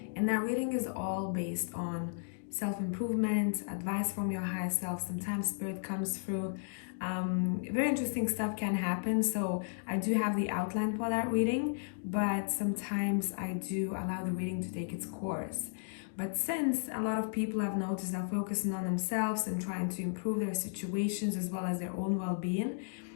And that reading is all based on self-improvement, advice from your higher self. Sometimes spirit comes through. Very interesting stuff can happen. So I do have the outline for that reading, but sometimes I do allow the reading to take its course. But since a lot of people I've noticed are focusing on themselves and trying to improve their situations as well as their own well-being,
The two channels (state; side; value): silent; right; digital silence